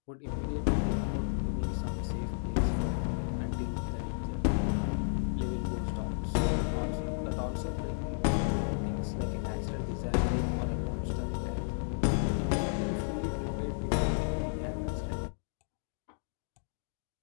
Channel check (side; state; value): right; silent; digital silence